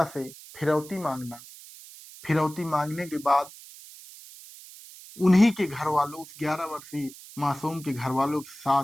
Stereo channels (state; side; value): noise; right; hiss, 18 dB below the sound